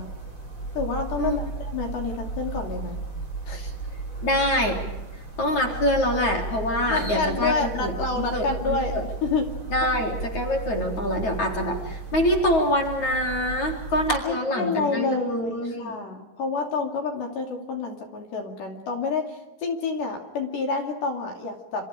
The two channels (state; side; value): late; right; 9.3 ms